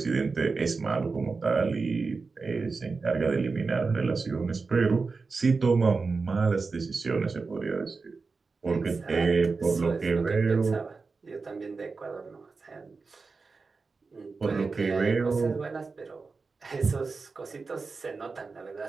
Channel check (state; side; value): quieter; left; 4.4 dB